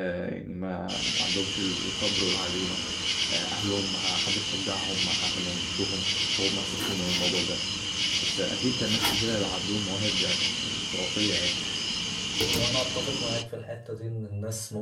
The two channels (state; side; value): identical; both; correlation 1.00